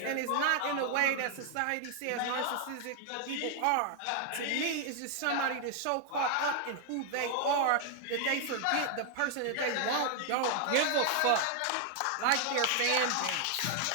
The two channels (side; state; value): both; different; correlation 0.00